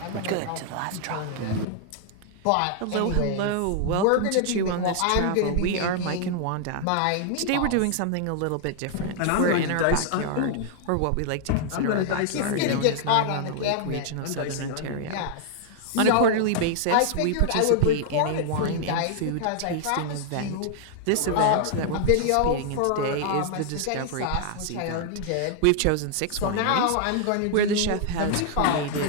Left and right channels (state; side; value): different; both; correlation -0.01